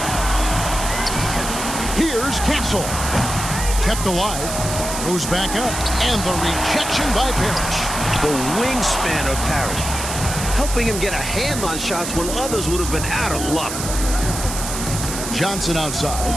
Here's Castle. Kept alive. Goes back up. And the rejection by Parrish. The wingspan of Parrish, helping him get a hand on shots when others would have been out of luck. Johnson outside.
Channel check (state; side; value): noise; right; hiss, 6 dB below the sound